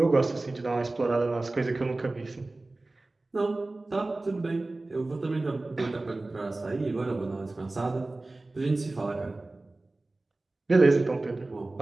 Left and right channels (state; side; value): quieter; left; 3.0 dB